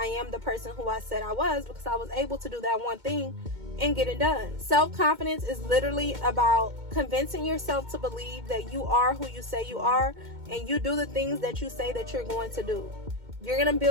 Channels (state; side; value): late; left; 2.2 ms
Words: am the person who I said I was, because I was able to do that one thing and get it done. Self-confidence is literally about convincing yourself to believe that you are who you say you are, and you do the things that you say that you're going to do. You're going to